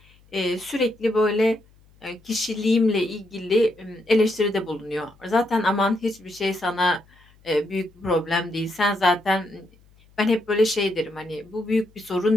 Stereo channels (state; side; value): noise; left; hum, 30 dB below the sound